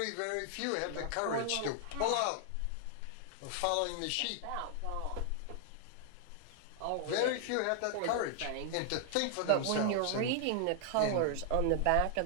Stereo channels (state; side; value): different; both; correlation 0.00